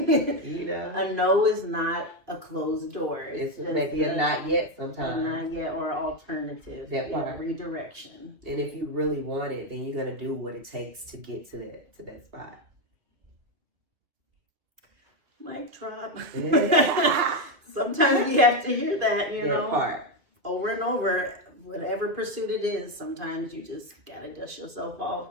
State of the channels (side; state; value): left; late; 2.3 ms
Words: no is not a closed door. It's maybe a not yet sometimes. Not yet, or alternative. That part. Redirection. And if you really want it, then you're gonna do what it takes to get to that spot. Mic drop. Sometimes we have to hear that, you That know, part. over and over. Whatever pursuit it is, sometimes you just gotta dust yourself